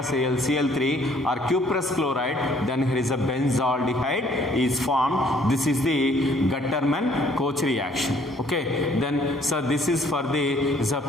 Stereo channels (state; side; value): normal; both; correlation 0.62